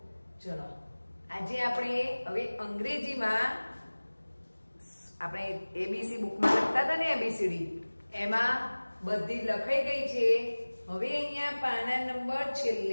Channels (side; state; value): both; inverted; correlation -1.00